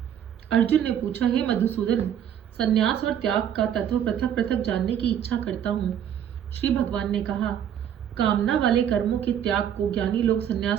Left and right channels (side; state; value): left; quieter; 9.5 dB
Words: अर्जुन ने पूछा, हे मधुसूदन, संन्यास और त्याग का तत्व पृथक पृथक जानने की इच्छा करता हूँ। श्री भगवान ने कहा, कामना वाले कर्मों के त्याग को ज्ञानी लोग